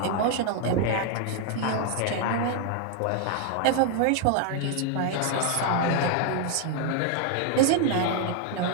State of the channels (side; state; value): both; different; correlation 0.00